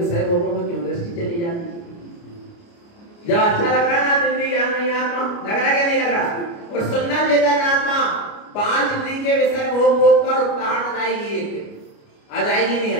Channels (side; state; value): right; late; 29 ms